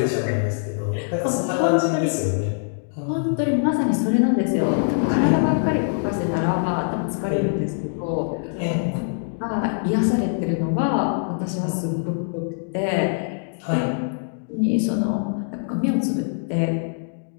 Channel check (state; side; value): silent; right; digital silence